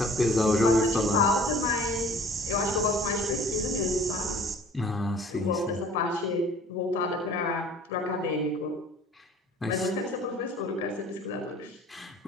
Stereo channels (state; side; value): normal; both; correlation 0.50